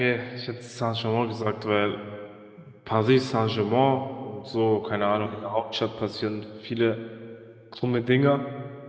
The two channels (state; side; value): identical; both; correlation 1.00